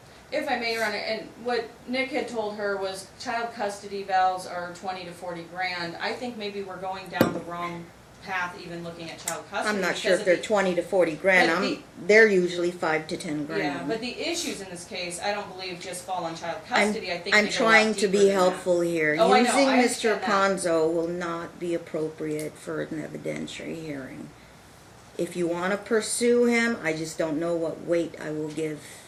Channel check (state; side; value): identical; both; correlation 1.00